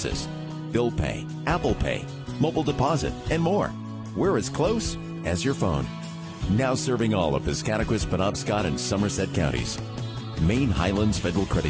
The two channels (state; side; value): identical; both; correlation 1.00